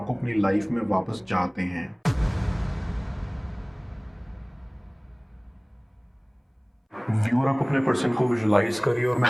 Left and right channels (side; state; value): both; identical; correlation 1.00